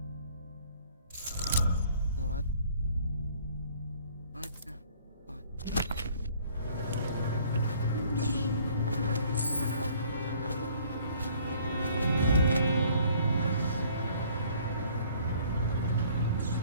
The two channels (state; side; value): inverted; both; correlation -0.57